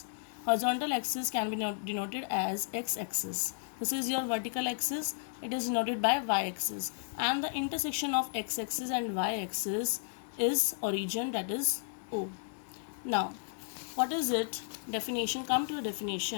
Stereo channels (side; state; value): right; silent; digital silence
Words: Horizontal axis can be denoted as x-axis. This is your vertical axis. It is denoted by y-axis. And the intersection of x-axis and y-axis is origin, that is O. Now what is it? Definition. Come to a